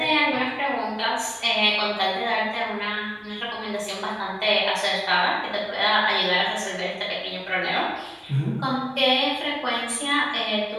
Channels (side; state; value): both; identical; correlation 1.00